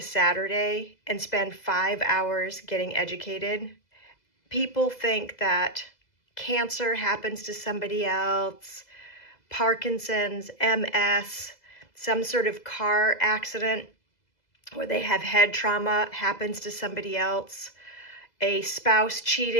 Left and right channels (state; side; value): late; right; 2.0 ms